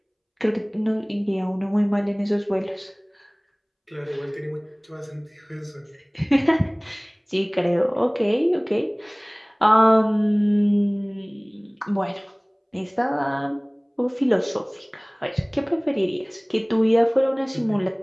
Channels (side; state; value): both; identical; correlation 1.00